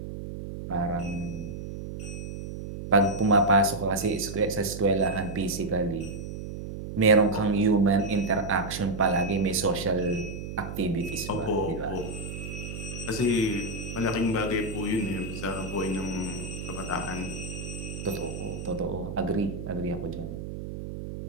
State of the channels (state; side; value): noise; right; hum, 8 dB below the sound